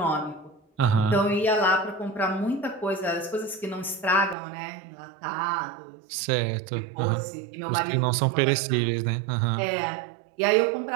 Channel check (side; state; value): left; drops out; at 4.4 s